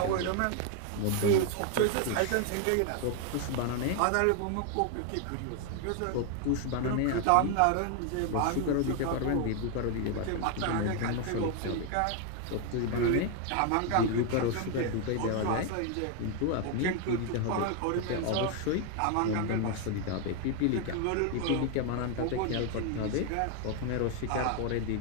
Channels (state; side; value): different; both; correlation 0.01